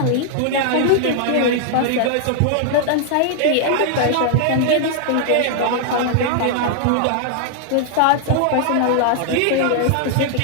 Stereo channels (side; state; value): both; different; correlation -0.01